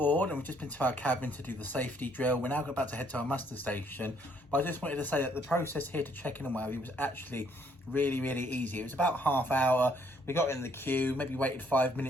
and we've just been to our cabin to do the safety drill. We're now about to head to our muster station. But I just wanted to say that the process here to check in and whatever was actually really, really easy. It was about half hour. We got in the queue, maybe waited 5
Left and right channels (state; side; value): normal; both; correlation 0.67